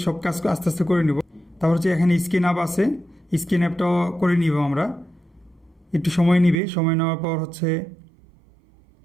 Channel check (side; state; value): left; drops out; at 6.6 s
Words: সব কাজ আস্তে আস্তে করে নিব। তারপর হচ্ছে এখানে স্ক্রিন অ্যাপ আছে, স্ক্রিন অ্যাপটাও করে নিব আমরা, একটু সময় নিবে। সময় নেওয়ার পর হচ্ছে